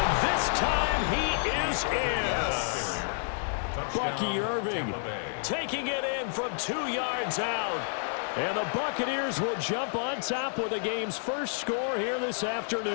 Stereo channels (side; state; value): right; silent; 58 dB below the other